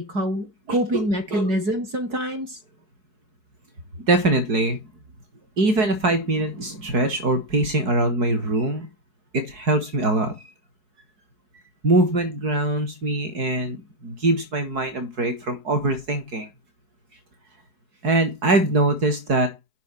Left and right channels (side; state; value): left; late; 4.7 ms